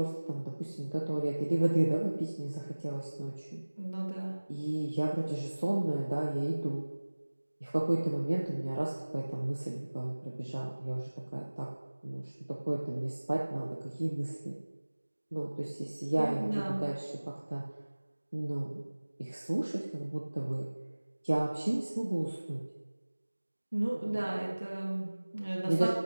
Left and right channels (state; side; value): inverted; both; correlation -1.00